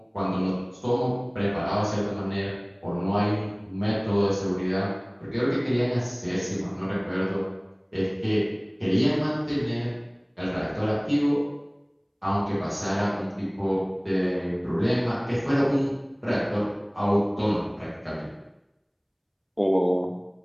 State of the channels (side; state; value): both; identical; correlation 1.00